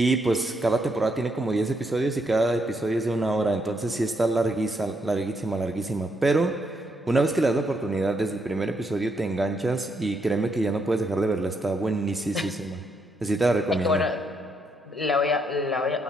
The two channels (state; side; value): normal; both; correlation 0.76